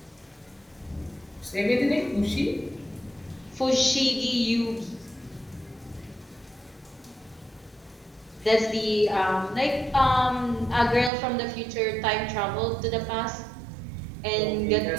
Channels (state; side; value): drops out; left; at 11.1 s